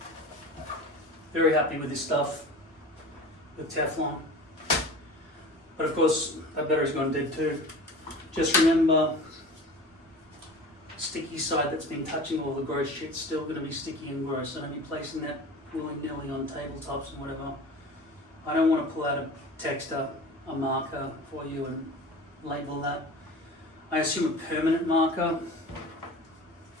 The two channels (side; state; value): both; normal; correlation 0.37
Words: Very happy with this stuff. With Teflon. But of course, that battery's gone dead too. Just remember, sticky side that's been touching all the gross shit's still going to be sticky and gross. So don't be placing that willy-nilly on tabletops and whatever. I don't want to pull out a texter, a marker for you and label that. I assume a permanent marker.